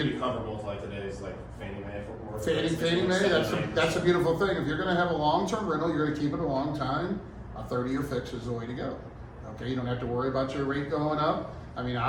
beauty. comparable to like today's like Fannie Mae or Fannie Mae, that's a beautiful thing. If you're gonna have a long-term rental, you're gonna keep it a long time, a 30-year fix is the way to go. Okay, you don't have to worry about your rate going up. I mean,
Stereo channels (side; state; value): both; identical; correlation 1.00